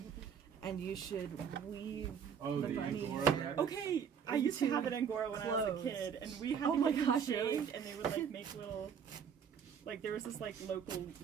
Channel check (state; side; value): quieter; left; 7.4 dB